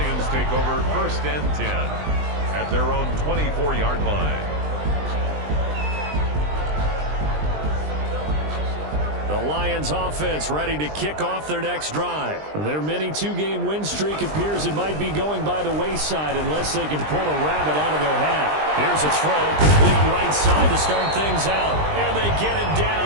take over 1st and 10 at their own 24-yard line. The Lions offense ready to kick off their next drive. Their mini 2-game win streak appears it might be going by the wayside unless they can pull a rabbit out of their hat. Here's a throw, complete right side to start things out. And they get him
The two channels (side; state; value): left; late; 20 ms